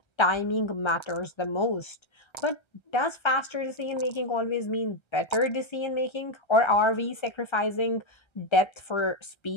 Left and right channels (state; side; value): late; right; 1.3 ms